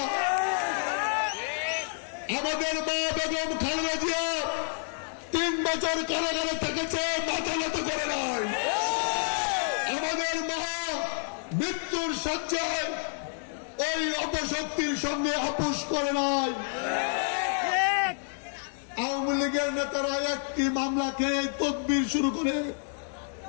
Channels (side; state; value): right; silent; 59 dB below the other